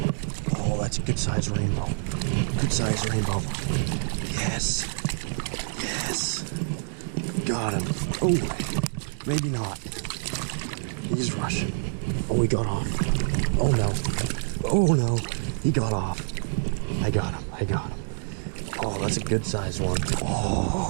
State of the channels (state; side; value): silent; left; digital silence